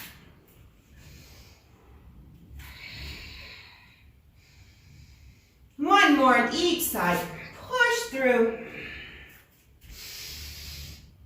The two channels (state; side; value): identical; both; correlation 1.00